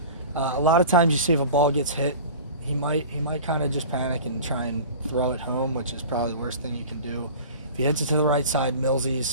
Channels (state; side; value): inverted; both; correlation -0.38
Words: A lot of times you see if a ball gets hit, he might kind of just panic and try and throw it home, which is probably the worst thing you can do. If he hits it to the right side,